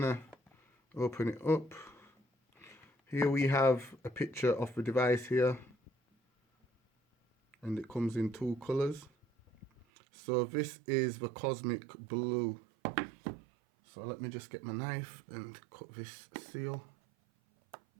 open it up. Here we have a picture of the device here, and it comes in two colors. So this is the cosmic blue. So let me just get my knife and cut this seal.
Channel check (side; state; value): left; drops out; at 9.9 s